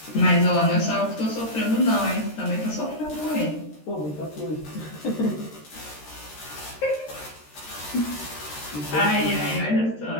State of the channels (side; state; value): right; late; 13 ms